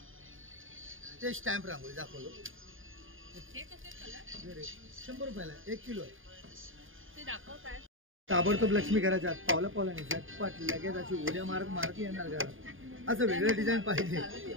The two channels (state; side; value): late; left; 0.59 ms